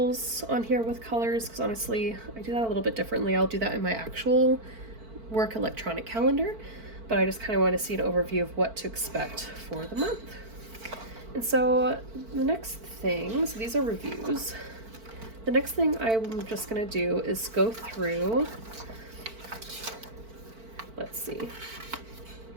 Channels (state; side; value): late; left; 4.5 ms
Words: on here with colors because honestly I do that a little bit differently. I'll do that in my actual work electronic calendar, but I just kind of want to see an overview of what to expect for the month. And so the next thing, so these are reviews. The next thing I'm just going to do is go through, let's see,